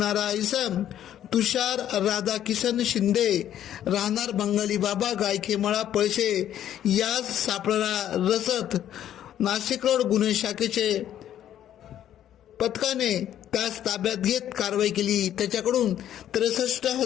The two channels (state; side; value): quieter; right; 11.1 dB